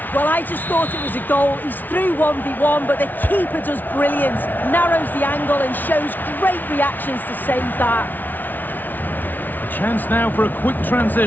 Well, I just thought it was a goal. He's through 1v1, but the keeper does brilliant, narrows the angle and shows great reactions to save that. A chance now for a quick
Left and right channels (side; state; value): right; late; 0.085 ms